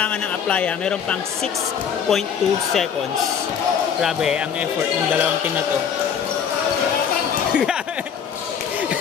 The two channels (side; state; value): right; quieter; 7.6 dB